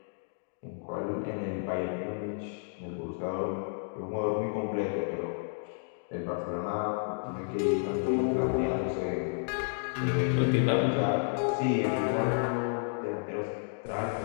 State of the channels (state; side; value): silent; right; digital silence